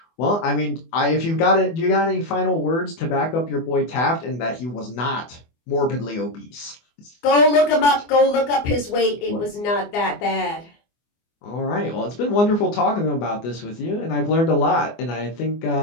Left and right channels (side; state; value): right; late; 24 ms